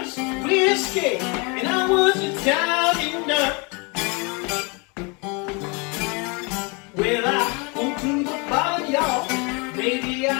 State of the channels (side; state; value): right; quieter; 30.9 dB